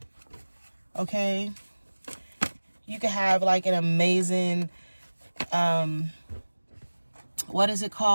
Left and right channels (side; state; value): both; inverted; correlation -1.00